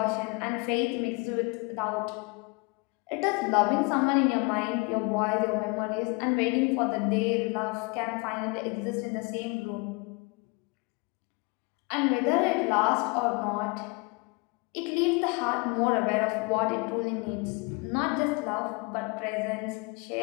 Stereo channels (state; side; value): quieter; right; 29.2 dB